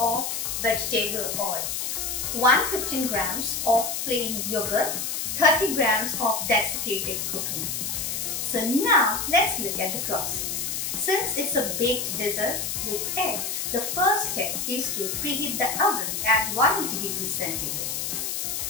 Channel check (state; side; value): noise; left; hiss, 2 dB below the sound